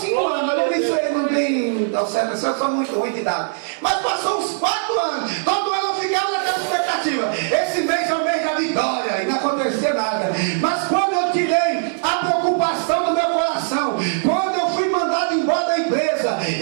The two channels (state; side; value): silent; left; digital silence